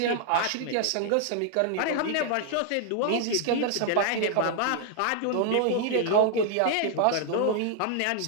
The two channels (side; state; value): both; different; correlation 0.00